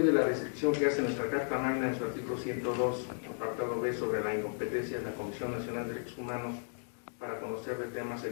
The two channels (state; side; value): silent; right; digital silence